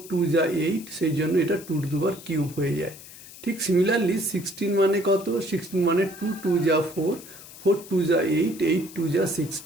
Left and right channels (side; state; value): left; noise; hiss, 17 dB below the sound